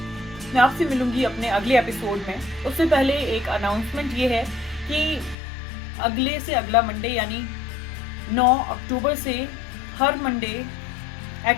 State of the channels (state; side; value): drops out; right; at 5.4 s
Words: मैं आपसे मिलूंगी अपने अगले एपिसोड में। उससे पहले एक अनाउंसमेंट ये है कि अगले से अगला मंडे यानी 9 अक्टूबर से हर मंडे